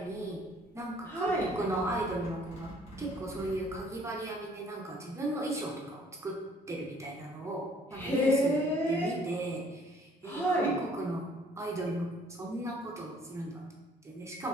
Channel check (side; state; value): both; normal; correlation 0.59